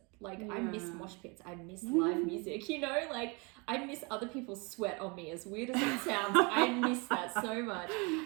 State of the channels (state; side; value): quieter; left; 29.8 dB